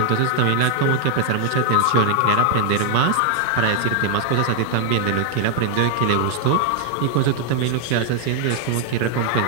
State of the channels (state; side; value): different; both; correlation 0.00